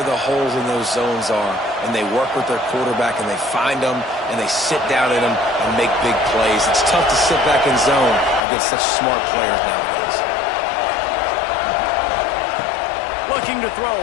the holes in those zones are, and they work with their quarterback, and they find them, and they sit down in them and make big plays. It's tough to sit back in zone against such smart players nowadays. Looking to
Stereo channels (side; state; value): right; drops out; at 8.4 s